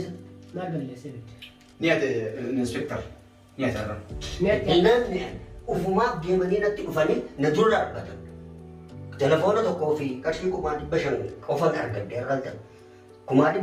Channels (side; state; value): both; identical; correlation 1.00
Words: maal balleessee نيات الانسبكتر نيات هذا mi'atti إنن وفما جيماني نتي كفاني ندور أربعة تلفونه تكوفي كشفي كمان بشر كفان أرجع ديرالتا كمان